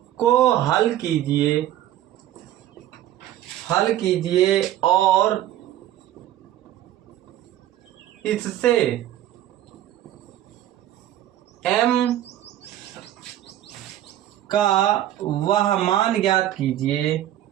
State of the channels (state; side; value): quieter; left; 12.8 dB